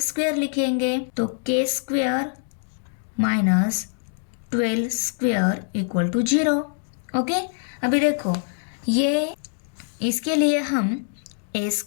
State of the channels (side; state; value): right; silent; digital silence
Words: स्क्वायर लिखेंगे। तो K square minus 12 square equal to 0। Okay, अभी देखो ये इसके लिए हम A